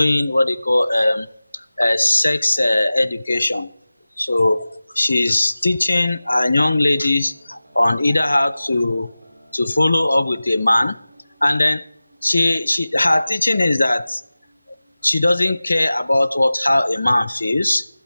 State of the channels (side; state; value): both; inverted; correlation -0.96